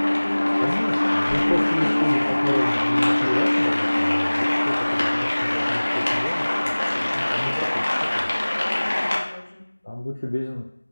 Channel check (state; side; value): inverted; both; correlation -1.00